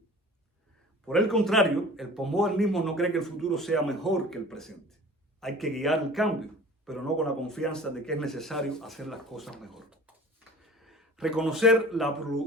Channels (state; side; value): normal; both; correlation 0.43